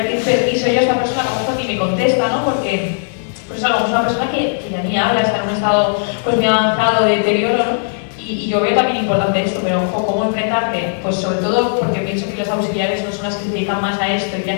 pedir permiso yo a esta persona, a lo mejor ni me contesta, ¿no? Porque pues a lo mejor es una persona que ya ni habla, está en un estado pues muy avanzado de deterioro, ¿no? Y yo veo también importante esto, pero ojo, ¿cómo enfrentarte? Pues sobre todo porque pienso que los auxiliares no son las que se dedican más a esto y que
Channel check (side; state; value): right; silent; 61 dB below the other